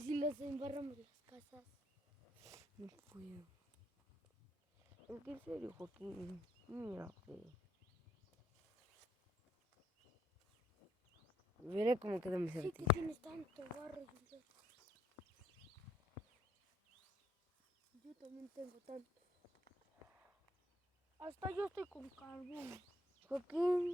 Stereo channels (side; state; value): both; normal; correlation 0.70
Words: los embarramos las casas. No puedo. Es que en serio, Joaquín. Mira, fe. Veré cómo queda mi Sí, que certeza. tienes tanto barro. Yo también tengo tanto. Hasta yo estoy con carbón.